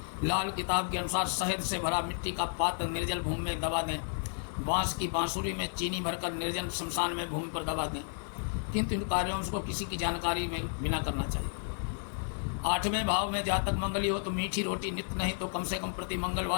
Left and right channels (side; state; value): right; silent; digital silence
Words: लाल किताब के अनुसार शहद से भरा मिट्टी का पात्र निर्जल भूमि में दबा दें। बांस की बांसुरी में चीनी भरकर निर्जन शमशान में भूमि पर दबा दें, किंतु इन कार्यों को किसी की जानकारी में बिना करना चाहिए। 8वें भाव में जातक मंगली हो तो मीठी रोटी नित्य नहीं तो कम से कम प्रति